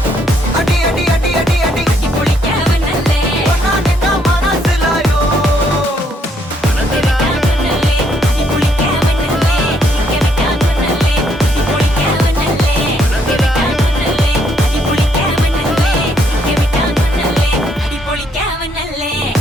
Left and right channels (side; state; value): both; normal; correlation 0.71